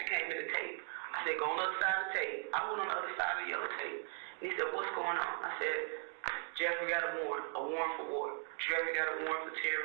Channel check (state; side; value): silent; left; 52 dB below the other